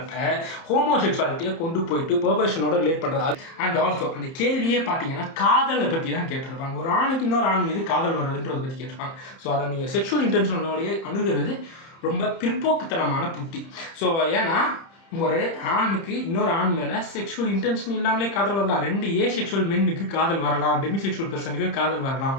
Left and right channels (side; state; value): right; late; 30 ms